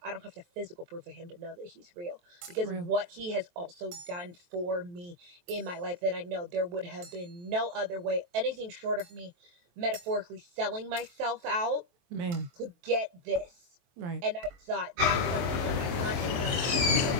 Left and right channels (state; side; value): late; left; 23 ms